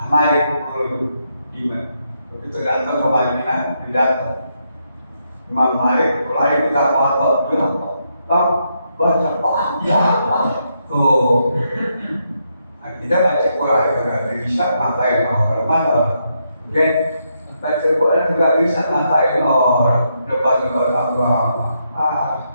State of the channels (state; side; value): inverted; both; correlation -0.79